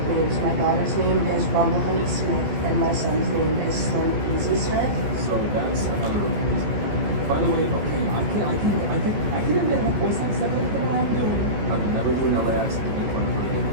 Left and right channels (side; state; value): left; late; 14 ms